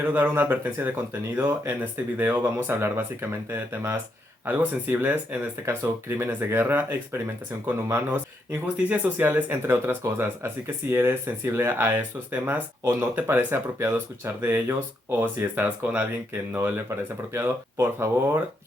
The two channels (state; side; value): normal; both; correlation 0.78